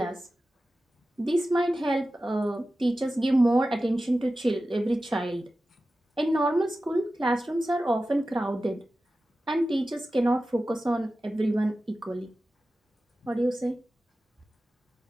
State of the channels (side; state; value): both; normal; correlation 0.94